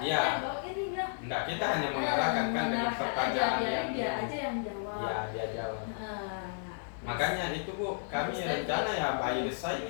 Iya. bahwa ini enggak. Enggak, kita hanya mengarahkan kan dengan pertanyaan yang dia aja yang jawab. ya dia jawab. Nah, Makanya itu Bu, kami Harus rencana tadi. ya by design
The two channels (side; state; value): right; silent; 56 dB below the other